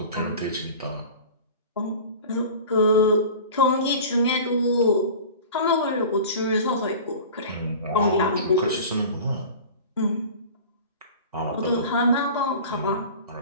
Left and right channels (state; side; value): inverted; both; correlation -0.38